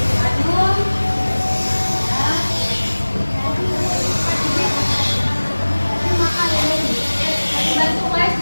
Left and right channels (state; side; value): inverted; both; correlation -1.00